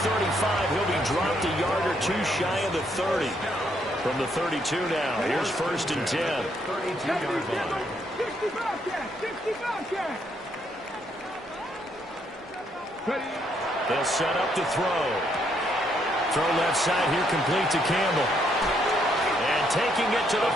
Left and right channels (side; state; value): both; normal; correlation 0.73